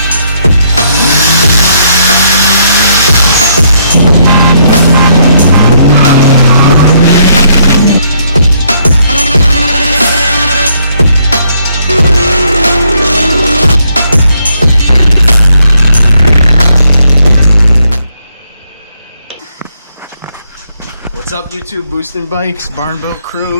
What's up, YouTube? Boosting Bikes, Barnboat crew,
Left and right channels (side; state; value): both; inverted; correlation -0.72